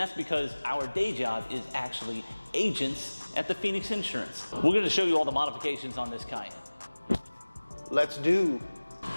because our day job is actually agents at the Phoenix Insurance. We're going to show you all the modifications on this Cayenne. Let's do.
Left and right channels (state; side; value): inverted; both; correlation -1.00